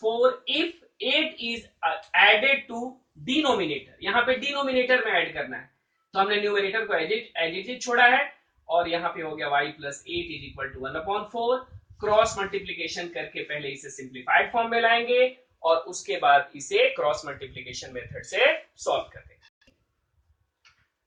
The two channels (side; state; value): both; identical; correlation 1.00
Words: if 8 is added to denominator. यहां पे डिनोमिनेटर में ऐड करना है, तो हमने न्यूमरेटर को एज इट इज छोड़ा है और यहां पे हो गया y + 8 is equal to 1/4। Cross multiplication करके पहले इसे सिंप्लीफाइड फॉर्म में लाएंगे और उसके बाद इसे क्रॉस मल्टीप्लीकेशन मेथड से सॉल्व कर देंगे।